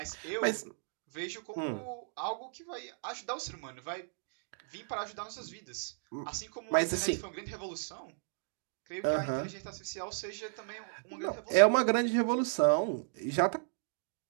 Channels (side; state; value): left; silent; digital silence